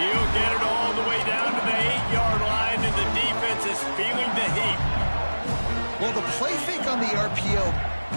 get it all the way down to the 8-yard line, and the defense is feeling the heat. Well, the play fake on the RPO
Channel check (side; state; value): both; inverted; correlation -1.00